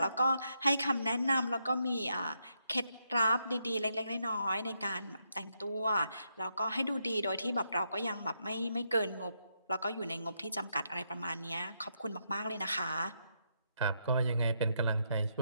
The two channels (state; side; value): inverted; both; correlation -0.80